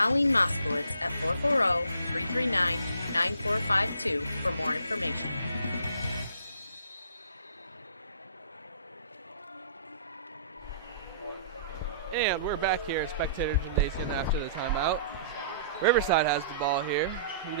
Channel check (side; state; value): both; inverted; correlation -0.54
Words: Moskowitz at 440-339-9452 for more information. And we're back here at Spectator Gymnasium after the timeout. Riverside has the ball here. You